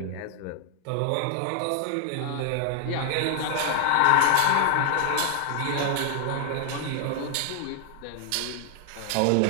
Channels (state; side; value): different; both; correlation 0.00